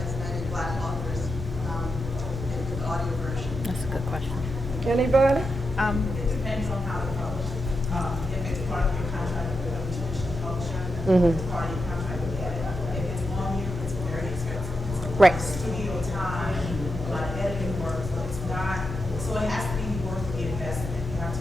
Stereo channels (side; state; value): both; normal; correlation 0.87